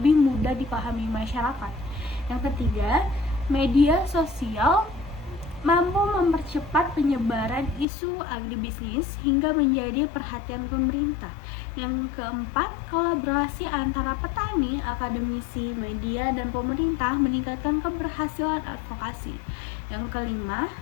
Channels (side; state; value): right; drops out; at 7.9 s